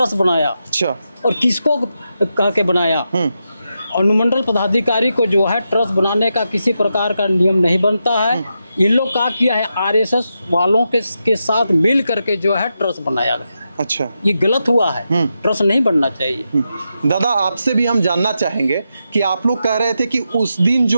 बनाया? अच्छा। और किसको कह के बनाया? अनुमंडल पदाधिकारी को जो है ट्रस्ट बनाने का किसी प्रकार का नियम नहीं बनता है। इन लोग क्या किया है, आरएसएस वालों के साथ मिल करके जो है ट्रस्ट बनाया गया। अच्छा। ये गलत हुआ है। ट्रस्ट नहीं बनना चाहिए। दादा, आपसे भी हम जानना चाहेंगे कि आप लोग कह रहे थे कि उस दिन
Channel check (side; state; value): both; inverted; correlation -0.86